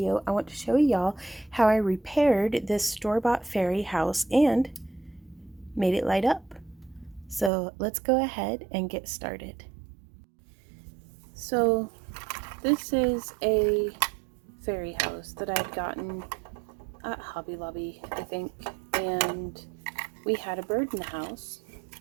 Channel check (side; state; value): left; drops out; at 7.5 s